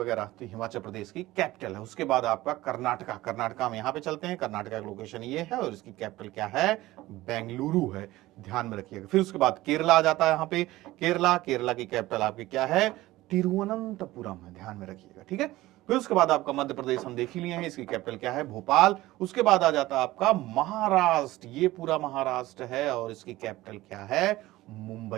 तो हिमाचल प्रदेश की कैपिटल है। उसके बाद आपका कर्नाटका। कर्नाटका में यहाँ पे चलते हैं। कर्नाटका का लोकेशन ये है, और इसकी कैपिटल क्या है, बेंगलुरु है। ध्यान में रखिएगा। फिर उसके बाद केरला आ जाता है यहाँ पे। केरला की कैपिटल आपकी क्या है, तिरुवनंतपुरम है। ध्यान में रखिएगा। ठीक है, फिर उसके बाद आपका मध्य प्रदेश हम देख ही लिए हैं, इसकी कैपिटल क्या है, भोपाल। उसके बाद आ जाता है आपका महाराष्ट्र। ये पूरा महाराष्ट्र है, और इसकी कैपिटल क्या है,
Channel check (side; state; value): left; quieter; 17.5 dB